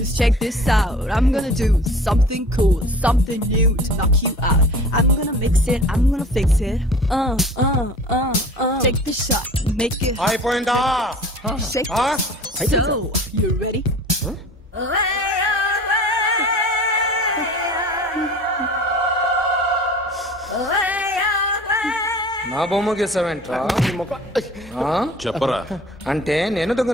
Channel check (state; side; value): normal; both; correlation 0.43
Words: check this out. I'm gonna do something cool, something new to knock you out. I'm gonna mix it, I'm gonna fix it. Take the shot, make it hot. అయిపోయిందా? Shake it. So, you ready? నా బొమ్మ గీసావేంట్రా? చెప్పరా. అంటే నేను